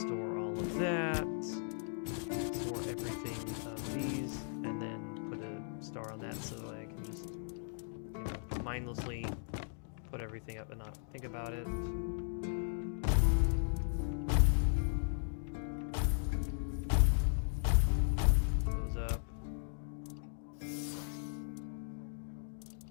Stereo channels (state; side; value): silent; right; digital silence